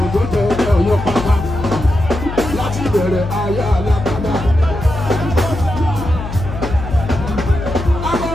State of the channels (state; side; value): noise; left; hum, 8 dB below the sound